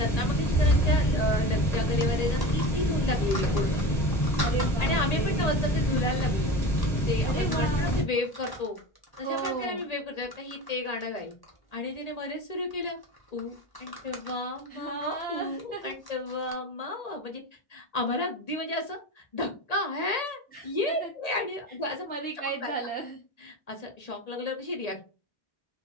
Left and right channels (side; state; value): right; late; 1.8 ms